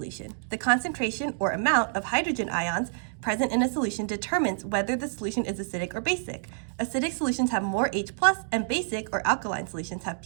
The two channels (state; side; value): silent; left; digital silence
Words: The concentration or amount of hydrogen ions present in a solution determines whether the solution is acidic or basic. Acidic solutions have more H+, and basic or alkaline solutions have